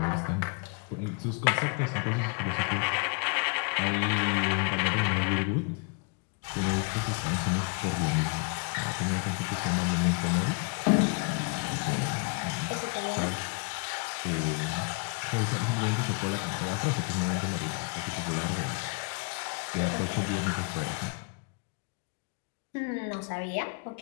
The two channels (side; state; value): right; quieter; 33.1 dB